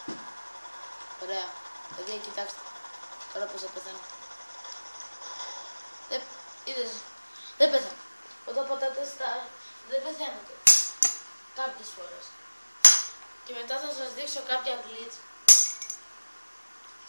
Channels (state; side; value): inverted; both; correlation -1.00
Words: Ωραία. Παιδιά κοιτάξτε. Τώρα πως θα πεθάνω. Είδες. Δεν πέθανε. Όταν πατάτε στα... δεν πεθαίνετε. Κάποιες φορές. Και μετά θα σας δείξω κάποια glitch.